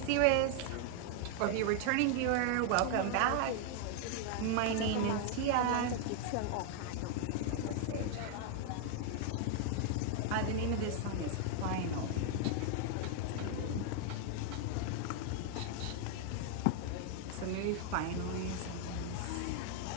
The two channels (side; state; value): both; different; correlation 0.00